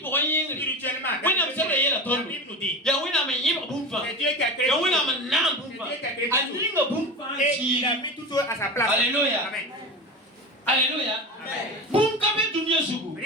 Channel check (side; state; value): both; normal; correlation 0.26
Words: pour un ying. spirituellement, Oui, non, c'est vrai, il y a la la tonne. Bible nous dit, Ya wina me yiba bumfa. c'est Dieu qui a créé Ya tout. wina me nan bumfa. A yinga bumfa Et il a chi. mis tout ça à sa place. Alléluia. Amen. Alléluia. Amen. Bum kabe dunia sugu.